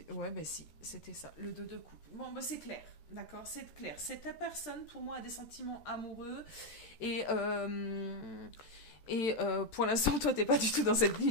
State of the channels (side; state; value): right; late; 13 ms